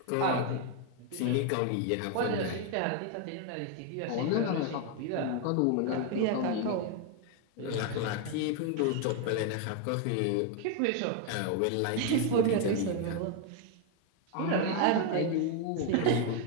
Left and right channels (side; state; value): both; different; correlation 0.01